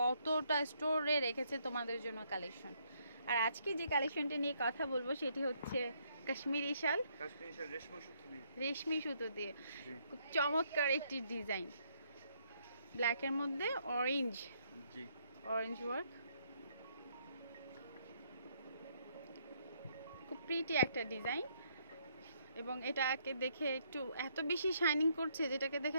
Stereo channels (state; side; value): inverted; both; correlation -0.71